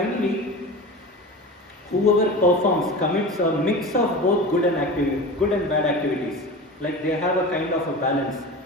whoever commits a mix of both good and bad activities, like they have a kind of a balance.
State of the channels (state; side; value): normal; both; correlation 0.31